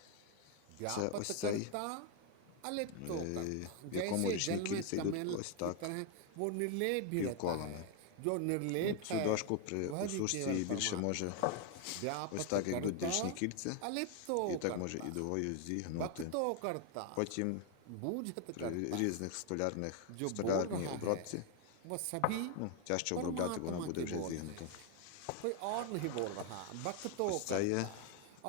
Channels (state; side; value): different; both; correlation 0.01